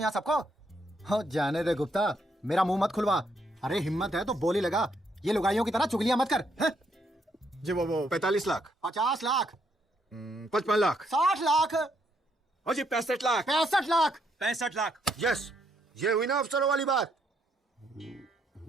यहाँ सबको? हो जाने दे गुप्ता, मेरा मुंह मत खुलवा। अरे हिम्मत है तो बोली लगा, ये लुगाइयों की तरह चुगलियां मत कर। है? जी वो 45 लाख 50 लाख 55 लाख 60 लाख और जी 65 लाख 65 लाख 65 लाख। यस, ये हुई ना अफसरों वाली बात।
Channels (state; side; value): normal; both; correlation 0.74